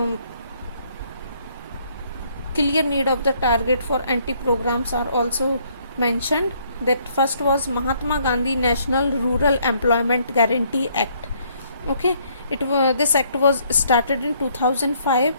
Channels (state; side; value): inverted; both; correlation -0.67